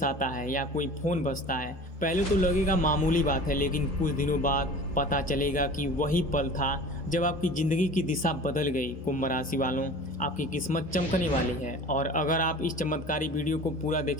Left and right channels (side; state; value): both; normal; correlation 0.40